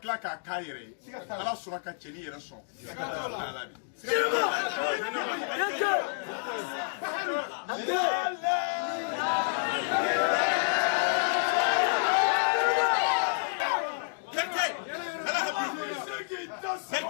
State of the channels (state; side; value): silent; right; digital silence